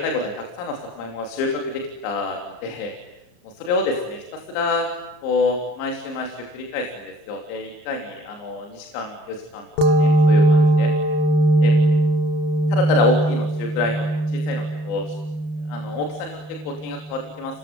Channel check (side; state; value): right; late; 33 ms